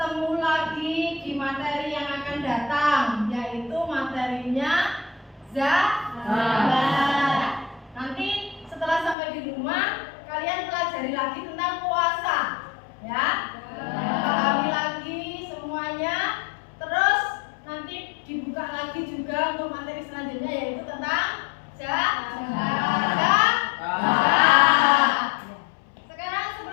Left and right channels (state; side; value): drops out; right; at 9.2 s